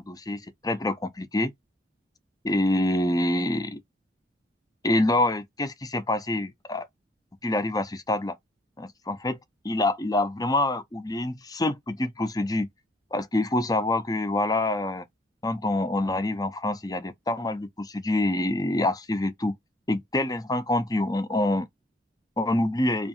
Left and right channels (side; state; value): both; normal; correlation 0.61